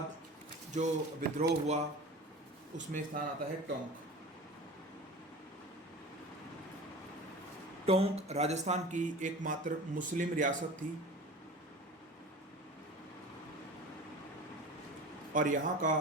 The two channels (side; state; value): both; normal; correlation 0.36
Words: जो विद्रोह हुआ उसमें स्थान आता है टोंक। टोंक राजस्थान की एकमात्र मुस्लिम रियासत थी, और यहाँ